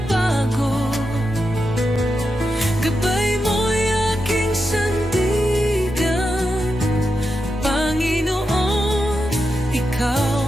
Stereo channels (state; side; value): normal; both; correlation 0.87